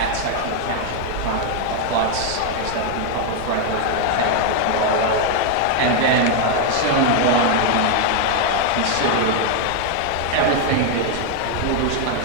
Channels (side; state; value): both; different; correlation 0.00